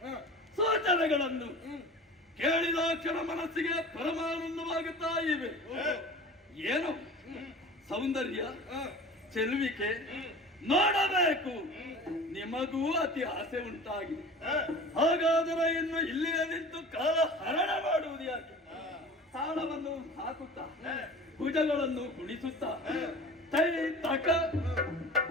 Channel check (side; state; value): both; normal; correlation 0.39